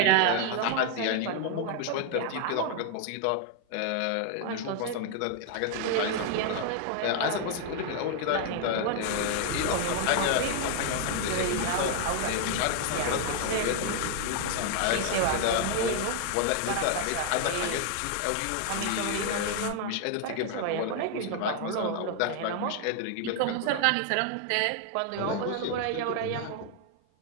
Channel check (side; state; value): both; different; correlation 0.00